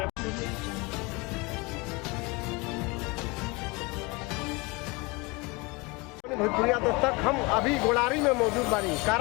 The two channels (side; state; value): right; quieter; 26.1 dB